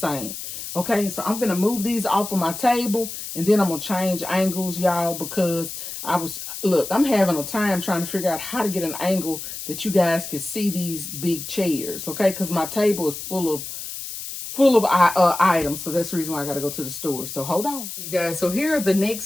Okay, so I'm going to move these off of my table, and then I'm going to change angles, y'all, because I'm having a time trying to figure out how to get an angle that you guys can see these big chairs, okay? Because my table is full of items, so that's the reason why I got to go to the store. So hold on, you guys. So here are the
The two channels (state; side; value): noise; left; hiss, 8 dB below the sound